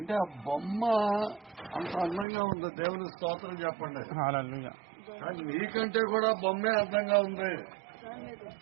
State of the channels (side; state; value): left; drops out; at 2.2 s